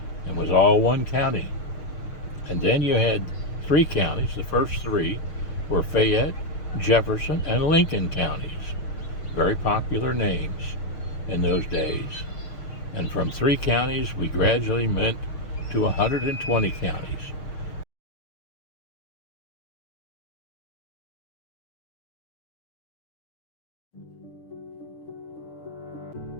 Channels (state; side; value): late; right; 6.5 ms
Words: and was all one county. And then you had 3 counties. The first 3 were Fayette, Jefferson, and Lincoln counties. Very popular names in those days. And from 3 counties, we gradually went to 120 counties.